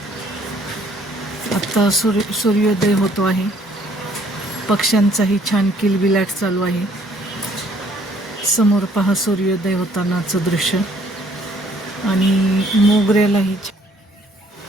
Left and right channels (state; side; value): normal; both; correlation 0.62